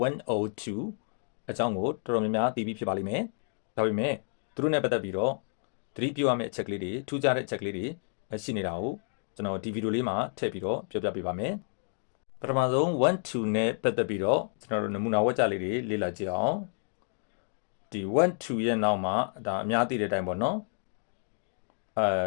102အကြောင်းကိုတော်တော်များများသိပြီးဖြစ်ပါလိမ့်မယ်ဒါပေမဲ့သူတို့နဲ့ပတ်သက်ပြီးတော့သတိပြုရမယ့်အချက်လေးတွေထူးခြားတဲ့အချက်လေးတွေရှိနေတာကိုကျွန်တော်ဒီဗီဒီယိုလေးမှာထည့်ပြီးတော့ပြောပြပေးပါမယ်ပထမဆုံး12နဲ့ပတ်သက်ပြီးတော့ကျွန်တော်တို့နမူနာဝက်ကြလေးတွေလေ့လာကြည့်အောင်ဒီ1-2ရဲ့နောက်မှာဒါအများသိတဲ့အတိုင်းပေါ့နော်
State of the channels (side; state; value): right; silent; 58 dB below the other